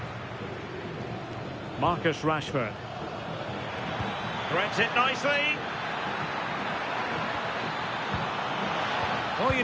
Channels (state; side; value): identical; both; correlation 1.00